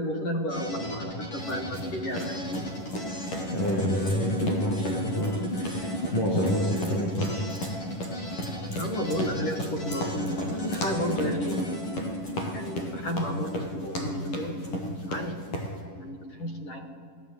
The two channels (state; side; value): late; right; 11 ms